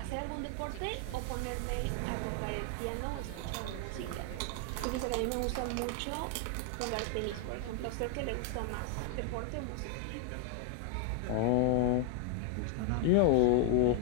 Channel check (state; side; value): different; both; correlation 0.00